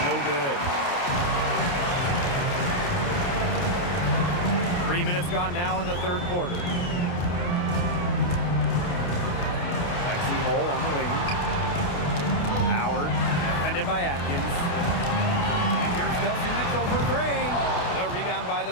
no good. 3 minutes gone now in the third quarter. Lexi Hole on the wing. Howard, defended by Atkins. And here's Kelsey Mitchell for three. The rebound by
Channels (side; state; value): right; late; 28 ms